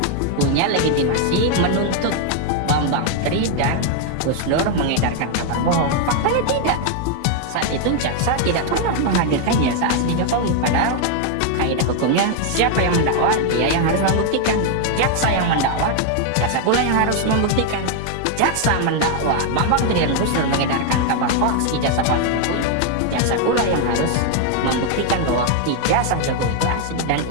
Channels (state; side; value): different; both; correlation 0.00